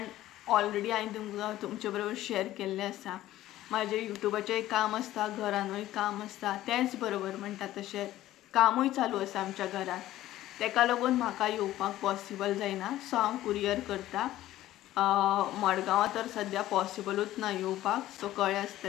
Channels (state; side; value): quieter; right; 14.6 dB